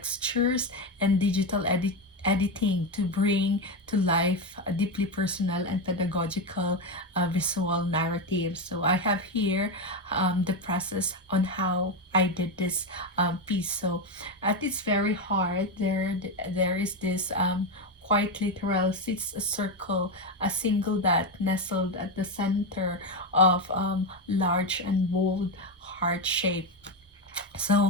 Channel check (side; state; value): both; normal; correlation 0.12